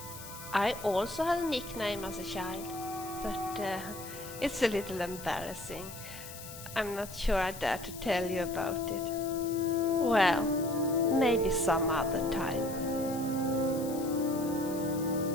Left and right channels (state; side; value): noise; left; hiss, 13 dB below the sound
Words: I also had a nickname as a child, but it's a little embarrassing. I'm not sure I dare to tell you about it. Well, maybe some other time.